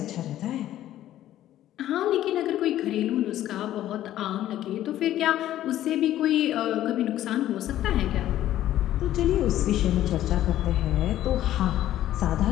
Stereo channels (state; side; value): quieter; right; 13.0 dB